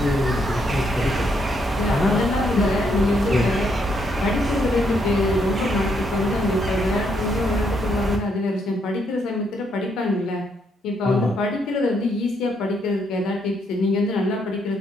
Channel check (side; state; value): both; normal; correlation 0.75